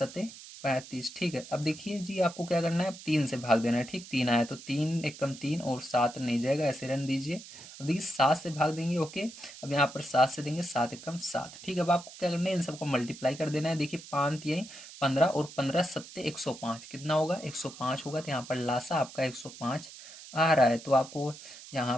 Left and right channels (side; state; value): right; noise; hiss, 16 dB below the sound